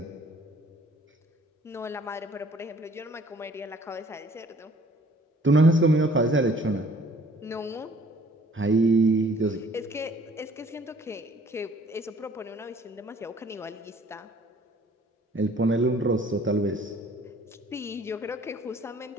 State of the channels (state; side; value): normal; both; correlation 0.56